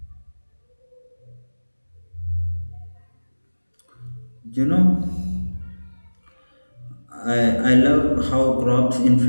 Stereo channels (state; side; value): inverted; both; correlation -1.00